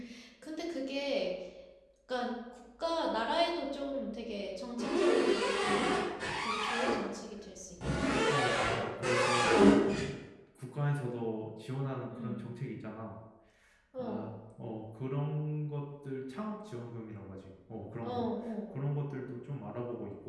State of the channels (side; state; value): both; identical; correlation 1.00